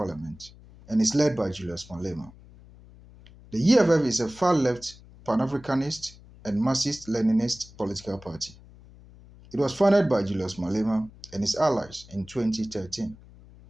and is led by Julius Malema. The EFF is a far-left, pan-Africanist, and Marxist-Leninist political party. It was founded by Julius Malema and his allies in 2013,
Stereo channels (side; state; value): left; noise; hum, 22 dB below the sound